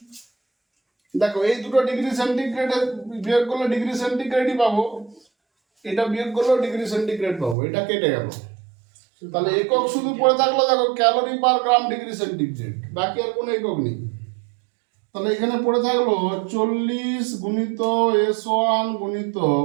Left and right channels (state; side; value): drops out; left; at 7.6 s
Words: দেখো এই দুটো ডিগ্রি সেন্টিগ্রেডের বিয়োগ করলে ডিগ্রি সেন্টিগ্রেডই পাবো, এটা বিয়োগ করলেও ডিগ্রি সেন্টিগ্রেড পাবো, এটা কেটে গেল। তাহলে একক শুধু পড়ে থাকলো দেখো calorie per gram degree centigrade, বাকি আর কোনো একক নেই। তাহলে এখানে পড়ে থাকলো 40 গুণিত s1 গুণিত